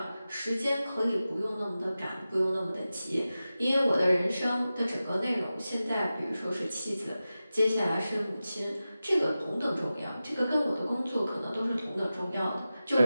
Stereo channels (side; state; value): both; inverted; correlation -0.94